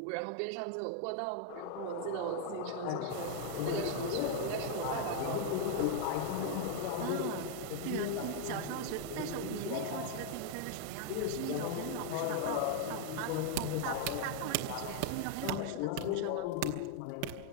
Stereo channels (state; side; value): different; both; correlation 0.00